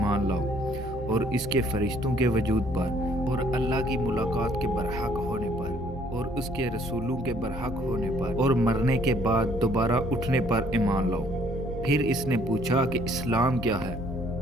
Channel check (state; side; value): normal; both; correlation 0.62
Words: لاؤ، اور اس کے فرشتوں کے وجود پر، اور اللہ کی ملاقات کے برحق ہونے پر، اور اس کے رسولوں کے برحق ہونے پر، اور مرنے کے بعد دوبارہ اٹھنے پر ایمان لاؤ۔ پھر اس نے پوچھا کہ اسلام کیا ہے؟